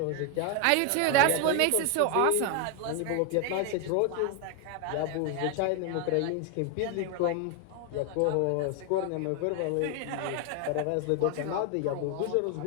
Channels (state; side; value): different; both; correlation 0.01